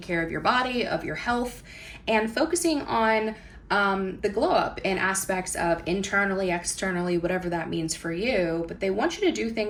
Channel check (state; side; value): identical; both; correlation 1.00